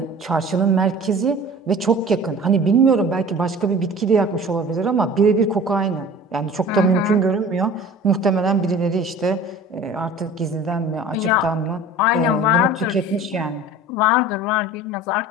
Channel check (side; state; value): both; normal; correlation 0.42